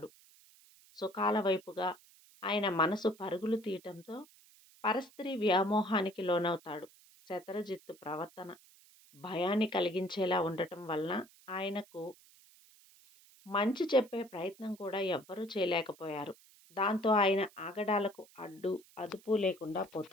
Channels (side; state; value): right; noise; hiss, 26 dB below the sound